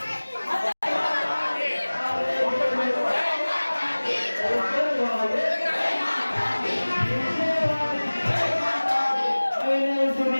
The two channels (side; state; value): both; inverted; correlation -1.00